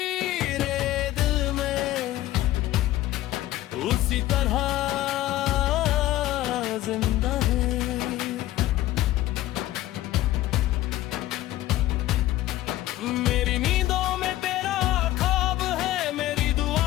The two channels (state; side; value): quieter; right; 15.2 dB